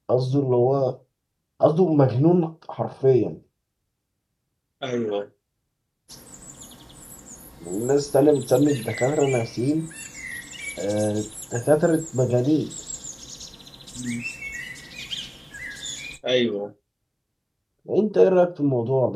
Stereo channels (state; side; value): identical; both; correlation 1.00